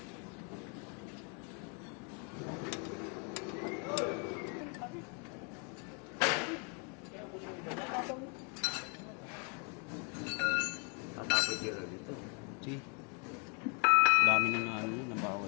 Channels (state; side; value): quieter; right; 35.7 dB